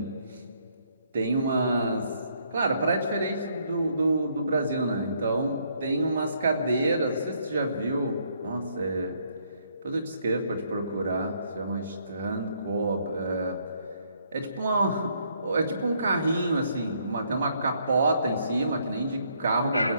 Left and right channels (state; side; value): inverted; both; correlation -0.70